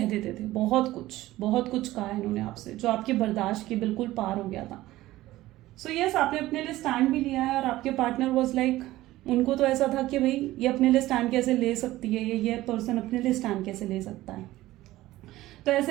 देते थे, बहुत कुछ कहा है इन्होंने आपसे जो आपके बर्दाश्त के बिल्कुल पार हो गया था। सो यस, आपने अपने लिए स्टैंड भी लिया है, और आपके पार्टनर वॉज लाइक, उनको तो ऐसा था कि भाई ये अपने लिए स्टैंड कैसे ले सकती है, ये पर्सन अपने लिए स्टैंड कैसे ले सकता है। तो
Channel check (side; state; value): left; quieter; 16.5 dB